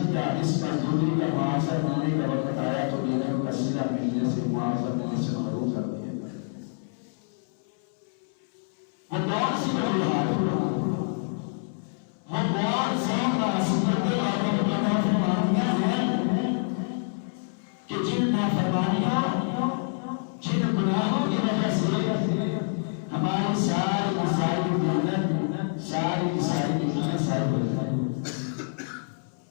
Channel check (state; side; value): silent; right; 60 dB below the other